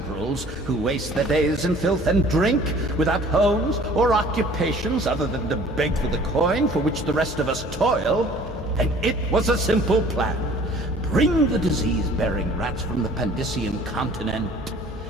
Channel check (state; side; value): normal; both; correlation 0.51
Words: who waste their days in filth and drink, without homes or occupations other than to beg for the coin for which the rest of us toil. And it was a simple plan. Bring the disease-bearing rats from the Pandician continent